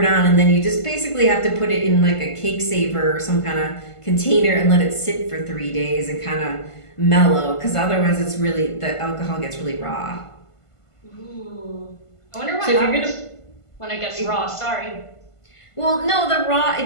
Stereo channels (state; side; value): late; right; 1.5 ms